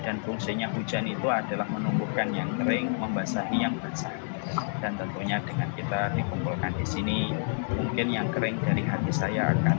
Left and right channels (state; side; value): silent; right; digital silence